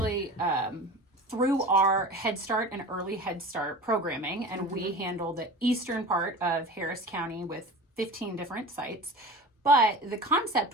through our Head Start and Early Head Start programming, and we handle the eastern part of Harris County with 15 different sites. But the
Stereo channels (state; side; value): normal; both; correlation 0.35